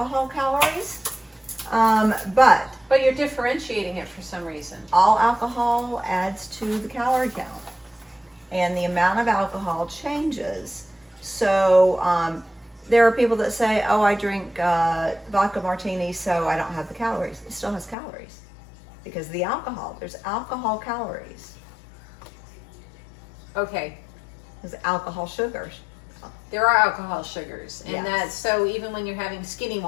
calories. But you're differentiating it for some reason. all alcohol adds to the calorie count, and the amount of alcohol changes. So there are people that say, oh, I drink vodka martini, so I don't have the calories. It still has calories because the alcohol, there's alcohol calories. Okay. There's alcohol sugars. There are alcohol sugars, and Yes. that's so even when you're having skinny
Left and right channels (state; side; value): drops out; right; at 17.9 s